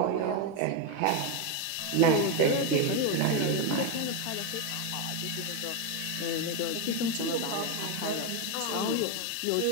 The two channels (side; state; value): both; different; correlation 0.02